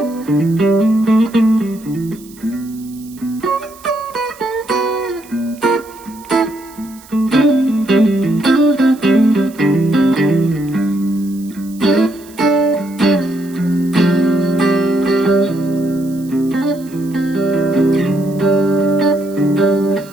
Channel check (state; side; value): noise; right; hiss, 23 dB below the sound